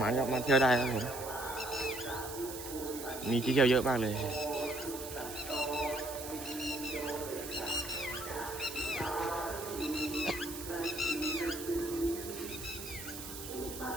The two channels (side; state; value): right; noise; hiss, 10 dB below the sound